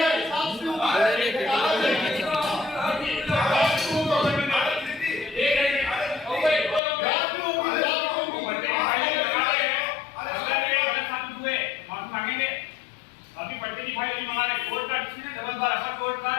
अभी पट्टे की फाइल नहीं मंगा रहे कोर्ट का डिसीजन डबल बार अपर कोर्ट का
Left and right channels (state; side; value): drops out; right; at 6.8 s